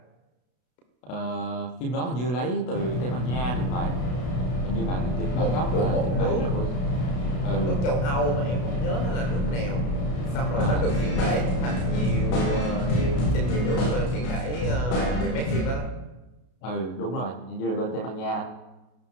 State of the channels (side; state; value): right; late; 33 ms